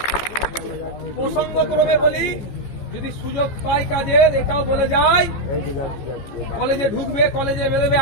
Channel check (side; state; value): right; late; 15 ms